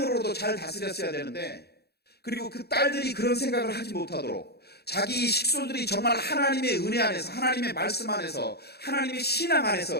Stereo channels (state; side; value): late; right; 0.47 ms